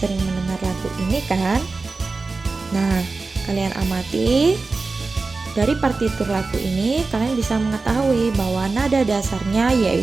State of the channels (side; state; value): left; quieter; 3.9 dB